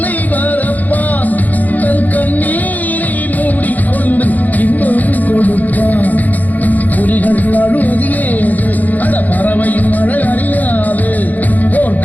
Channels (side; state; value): right; late; 0.081 ms